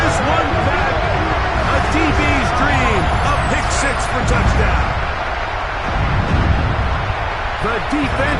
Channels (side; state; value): both; identical; correlation 1.00